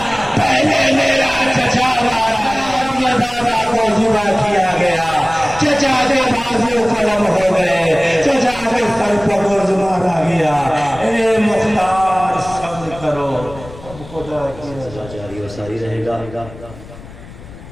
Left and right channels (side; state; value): left; noise; rumble, 17 dB below the sound